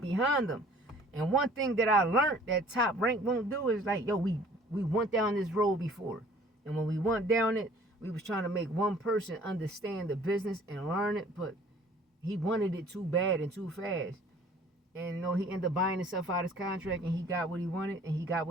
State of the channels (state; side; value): normal; both; correlation 0.52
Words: behind them. And one thing that I learned that Top Rank won't do is like, yo, we went down this road before. And when we went down it, We was trying to make one person understand the business and learn it, but he wanted it too bad and too fast. And you know, he ended up buying himself out of his contract, and he got what he wanted, and he got